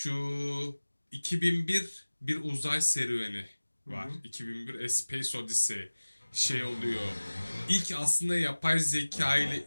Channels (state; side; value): inverted; both; correlation -1.00